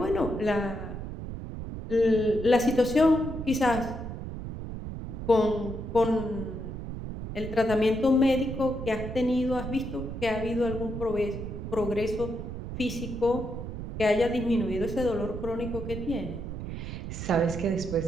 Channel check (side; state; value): right; noise; rumble, 7 dB below the sound